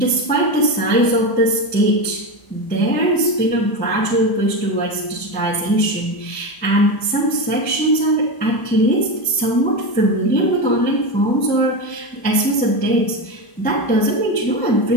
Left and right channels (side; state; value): right; late; 1.0 ms